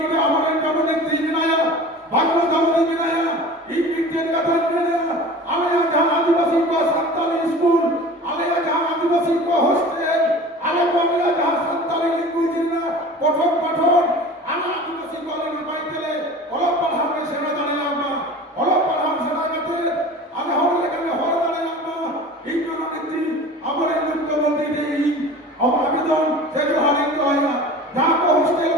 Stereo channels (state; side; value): normal; both; correlation 0.39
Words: আমাদের জননেত্রী বিনায়া বাংলা দামদি বিনায়া এই বিজ্ঞান কথা বিনায়া আলেয়া जहां आदिवासी को संताली स्कूल आलेया जहां आदिवासी को हॉस्टेल आले बांग्ला जहां संताली लैंग्वेज ना पठन आना आदिवासी को आले पाइतेले অলপ পাঠামে সেনা দাঁড়ালাম না অলপ পাঠাম সেনা কাতে আলে হলে কানে হল দাঁড়ালাম না এই জননেত্রী আমার এই মুখ্যমন্ত্রী এই আবেদন সে হারিয়ে হয় না যা কো হস্টেল